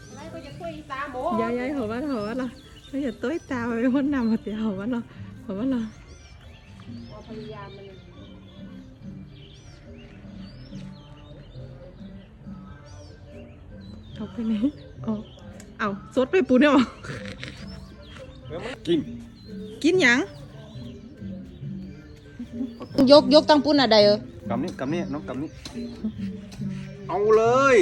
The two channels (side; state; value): both; identical; correlation 1.00